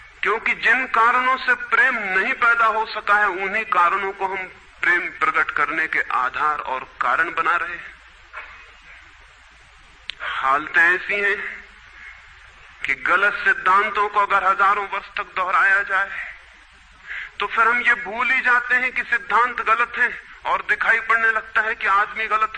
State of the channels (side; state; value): both; identical; correlation 1.00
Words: क्योंकि जिन कारणों से प्रेम नहीं पैदा हो सका है, उन्हीं कारणों को हम प्रेम प्रकट करने के आधार और कारण बना रहे हैं। हालतें ऐसी हैं कि गलत सिद्धांतों को अगर हजारों वर्ष तक दोहराया जाए तो फिर हम ये भूल ही जाते हैं कि सिद्धांत गलत हैं, और दिखाई पड़ने लगता है कि आदमी